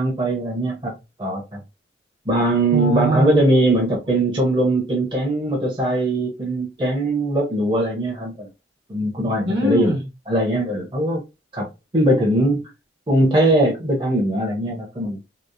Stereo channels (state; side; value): normal; both; correlation 0.57